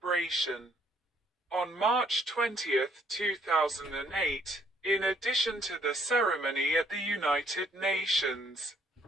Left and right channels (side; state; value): both; normal; correlation 0.66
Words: On March 20, 2008, in addition to the ceremony at the United Nations,